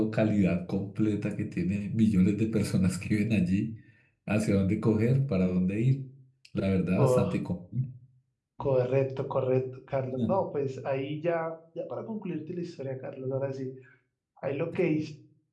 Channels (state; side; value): identical; both; correlation 1.00